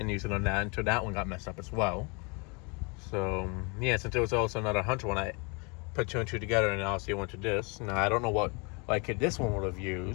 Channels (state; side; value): quieter; right; 31.5 dB